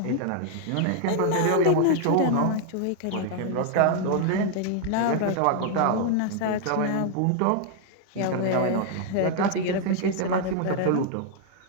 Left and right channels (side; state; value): both; different; correlation 0.00